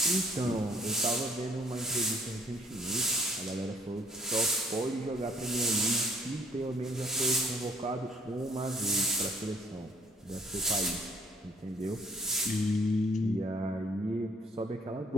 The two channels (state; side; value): normal; both; correlation 0.61